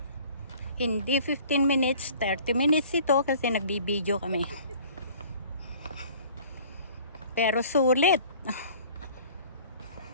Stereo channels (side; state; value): both; inverted; correlation -0.49